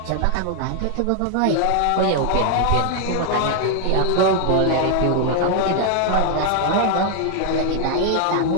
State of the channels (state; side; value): different; both; correlation 0.00